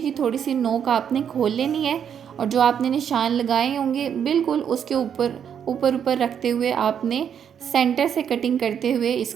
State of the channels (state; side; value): quieter; left; 8.3 dB